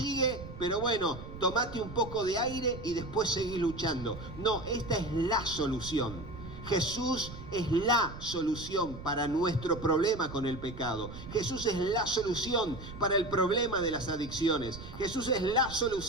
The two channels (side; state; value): right; noise; rumble, 12 dB below the sound